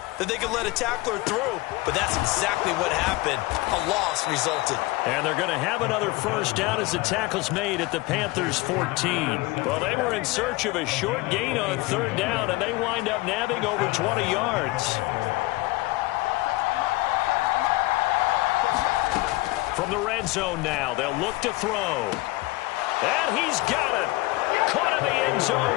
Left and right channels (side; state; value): right; quieter; 20.7 dB